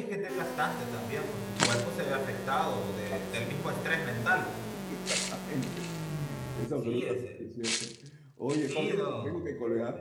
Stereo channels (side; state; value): both; identical; correlation 1.00